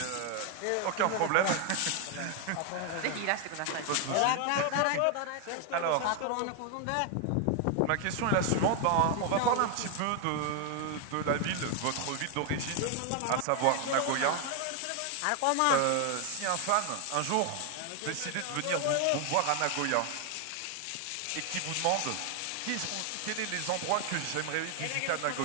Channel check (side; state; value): both; different; correlation 0.00